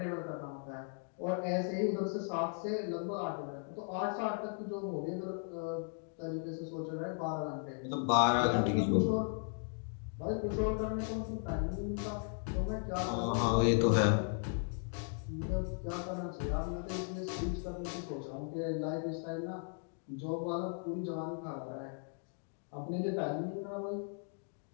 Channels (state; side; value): silent; right; 53 dB below the other